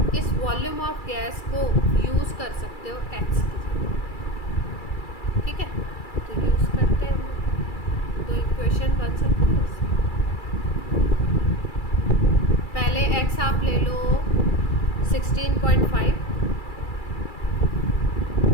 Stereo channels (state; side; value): late; right; 2.3 ms